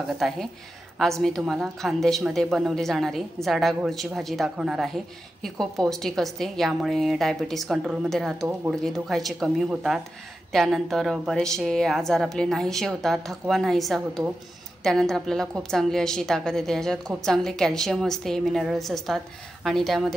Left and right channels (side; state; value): both; normal; correlation 0.91